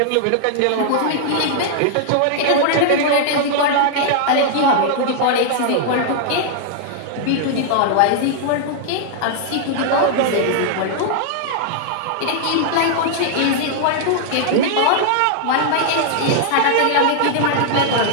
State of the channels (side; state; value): both; different; correlation -0.01